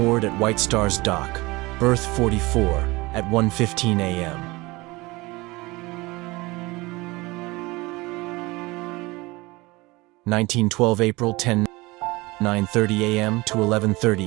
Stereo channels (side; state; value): left; quieter; 22.5 dB